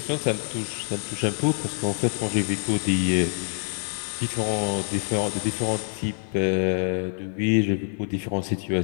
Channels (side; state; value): right; silent; 61 dB below the other